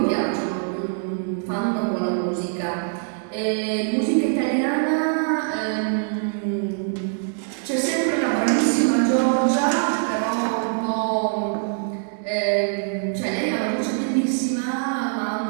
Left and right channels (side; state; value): left; silent; digital silence